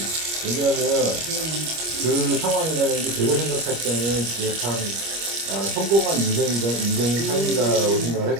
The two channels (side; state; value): left; late; 25 ms